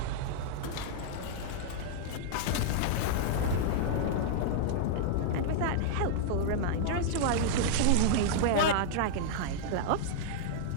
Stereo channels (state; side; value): different; both; correlation -0.01